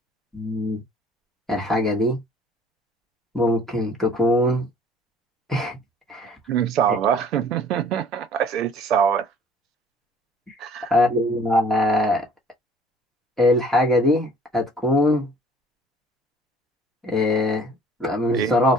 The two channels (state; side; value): normal; both; correlation 0.53